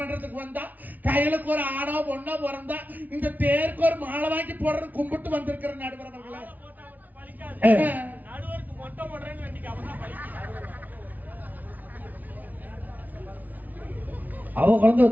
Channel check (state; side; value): late; left; 0.078 ms